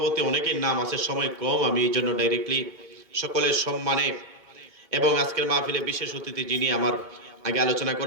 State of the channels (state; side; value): late; left; 2.3 ms